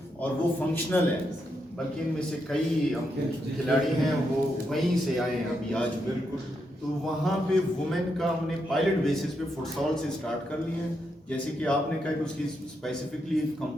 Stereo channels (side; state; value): both; normal; correlation 0.82